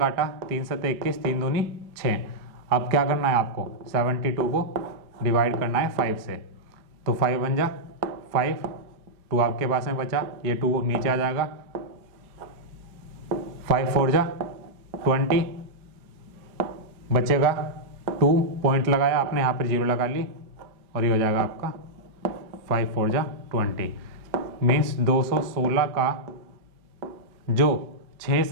3 7 21, 3 दूनी 6। अब क्या करना है आपको, 72 को डिवाइड करना है 5 से, तो 5 बन जा 5, 2 आपके पास में बचा, ये 2 नीचे आ जाएगा, 5 4 जा 20, बचेगा 2, पॉइंट लगाया आपने, यहाँ पर 0 लगा ली और ये हो जाएगा आपका 5 4 जा 20। मीन्स 216 का जो 6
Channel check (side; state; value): left; late; 4.9 ms